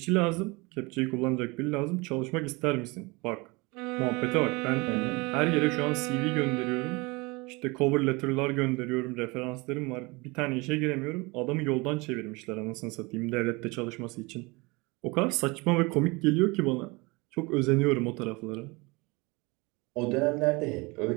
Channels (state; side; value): quieter; left; 25.7 dB